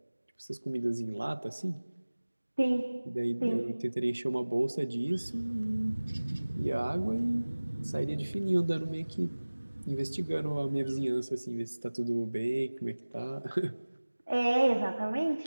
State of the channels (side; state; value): both; inverted; correlation -1.00